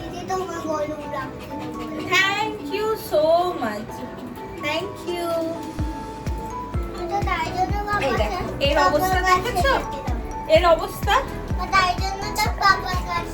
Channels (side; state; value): both; identical; correlation 1.00